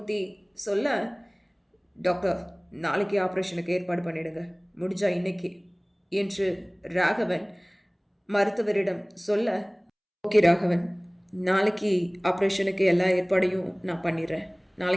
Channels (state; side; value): identical; both; correlation 1.00